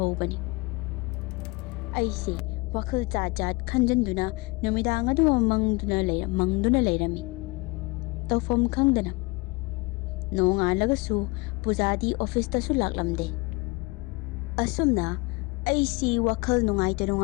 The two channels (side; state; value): right; quieter; 25.0 dB